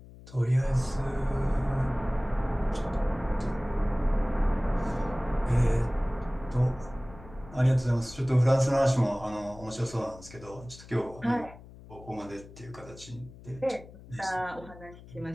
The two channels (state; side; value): noise; left; hum, 19 dB below the sound